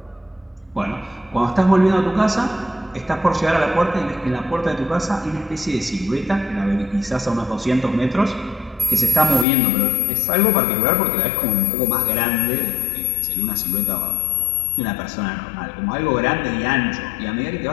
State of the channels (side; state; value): right; drops out; at 9.5 s